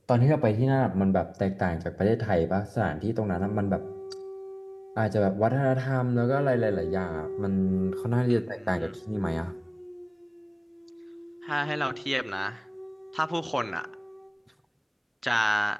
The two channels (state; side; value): identical; both; correlation 1.00